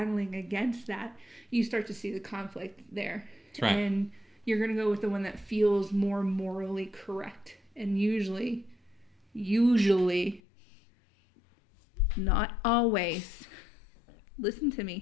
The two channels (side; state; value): right; drops out; at 10.4 s